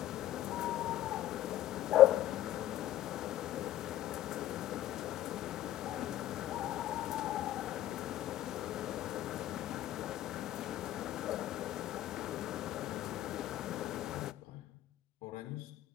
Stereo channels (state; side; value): quieter; right; 13.4 dB